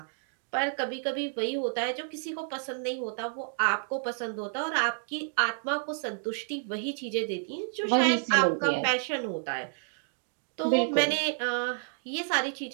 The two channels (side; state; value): left; silent; digital silence